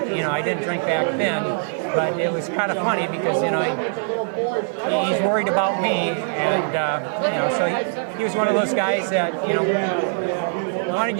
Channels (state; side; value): silent; left; 63 dB below the other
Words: didn't drink back then, but it was kind of funny because, you know, he's worried about me, and you know, so he was one of those guys that, you know, wanted